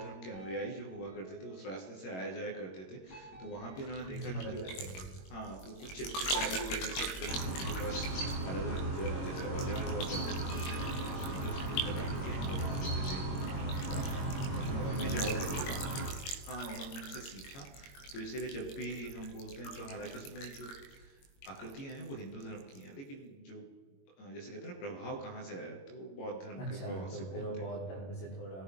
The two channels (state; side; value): late; right; 22 ms